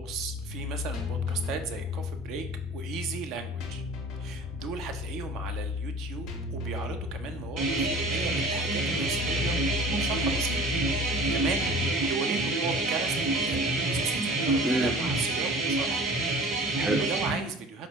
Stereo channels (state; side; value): normal; both; correlation 0.43